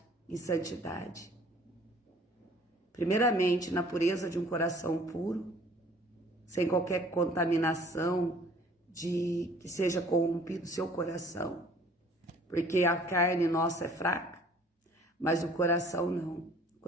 em santidade. Primeiramente, na pureza de um coração puro, sem qualquer contaminação de que seja corrompido o seu coração. Porque a carne nossa é fraca, mas o coração não. O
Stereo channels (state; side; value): normal; both; correlation 0.54